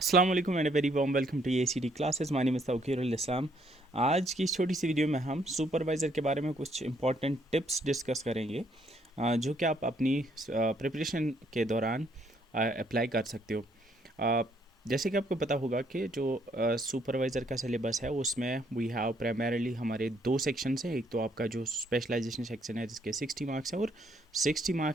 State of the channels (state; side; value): normal; both; correlation 0.69